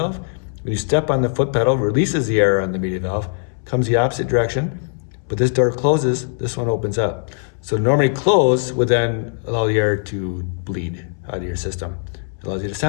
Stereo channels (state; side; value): silent; right; 62 dB below the other